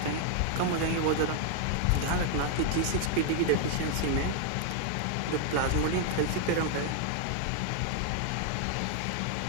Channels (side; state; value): both; different; correlation 0.00